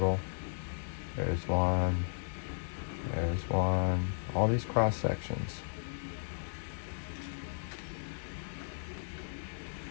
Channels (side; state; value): right; silent; digital silence